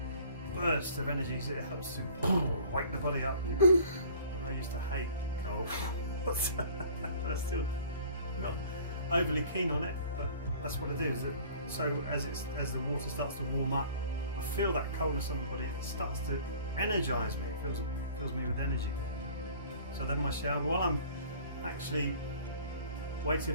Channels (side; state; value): both; inverted; correlation -0.49